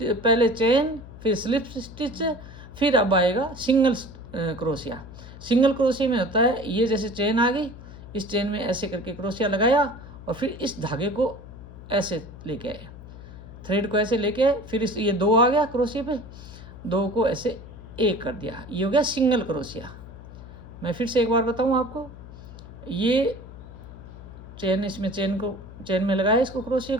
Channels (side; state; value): left; noise; hum, 15 dB below the sound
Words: पहले चेन, फिर स्लिप स्टिच, फिर अब आएगा सिंगल क्रोशिया। सिंगल क्रोशिया में होता है ये जैसे चेन आ गई, इस चेन में ऐसे करके क्रोशिया लगाया, और फिर इस धागे को ऐसे लेके आए, थ्रेड को ऐसे लेके आए, फिर ये 2 आ गया क्रोशिया पे, 2 को ऐसे 1 कर दिया, ये हो गया सिंगल क्रोशिया। मैं फिर से एक बार बताऊँ आपको, ये चेन, इसमें चेन में लगाया इसको क्रोशिया